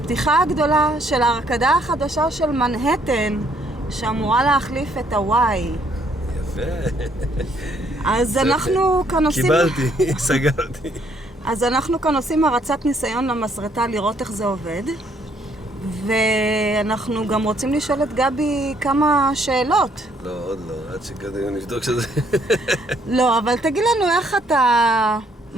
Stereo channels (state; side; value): normal; both; correlation 0.67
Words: הגדולה של ההרקדה החדשה של מנהטן, שאמורה להחליף את הוואי. יפה. אז אנחנו כאן עושים... קיבלתי, סגרתי. אז אנחנו כאן עושים הרצת ניסיון למסרטה לראות איך זה עובד. ואנחנו גם רוצים לשאול את גבי כמה שאלות. לא, עוד לא, עד שקודם נבדוק שזה... לא, אבל תגיד לנו איך אתה